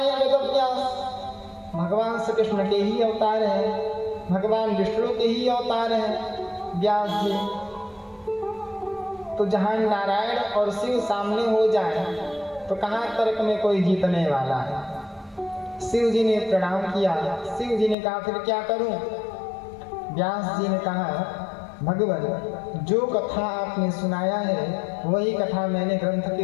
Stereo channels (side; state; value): right; drops out; at 17.9 s